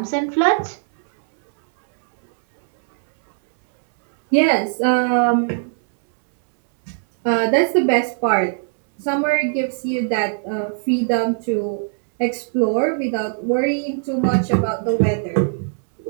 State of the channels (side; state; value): left; silent; 66 dB below the other